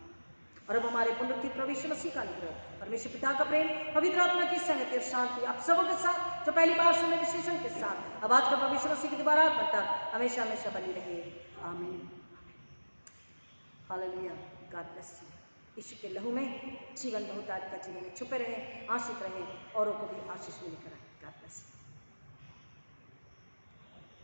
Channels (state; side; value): inverted; both; correlation -1.00